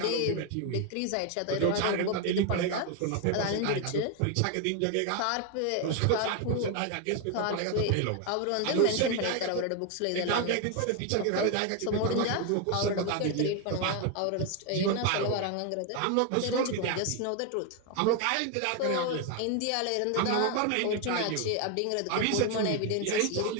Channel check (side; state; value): both; different; correlation 0.01